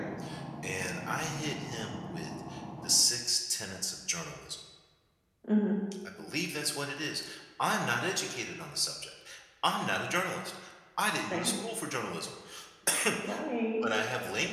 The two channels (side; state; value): both; identical; correlation 1.00